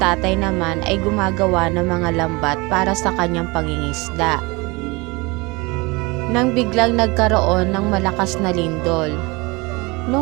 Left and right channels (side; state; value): left; quieter; 25.4 dB